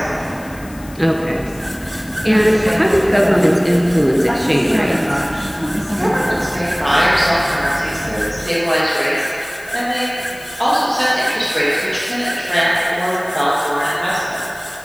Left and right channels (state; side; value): noise; left; hiss, 21 dB below the sound